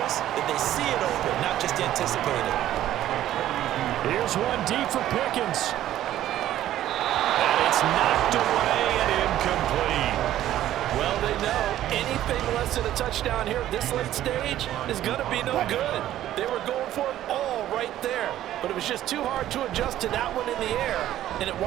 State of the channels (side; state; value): left; quieter; 12.9 dB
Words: that they see it open, not just anticipate it. Here's one deep for Pickens. And it's knocked away and incomplete. Well, they know anything less than a touchdown here at this late stage is going to be no good. They were going for it all right there, but it was just too hard to adjust to that one in the air, and it